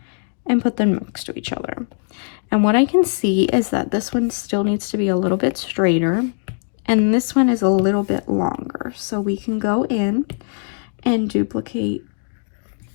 and put them next to each other. And what I can see is that this one still needs to be a little bit straighter and this one is a little bit longer. So we can go in and duplicate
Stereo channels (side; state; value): right; silent; digital silence